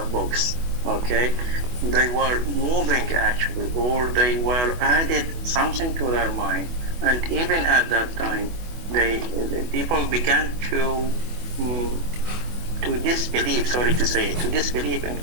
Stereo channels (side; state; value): left; late; 24 ms